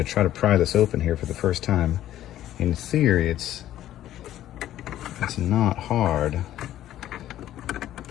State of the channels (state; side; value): quieter; right; 12.8 dB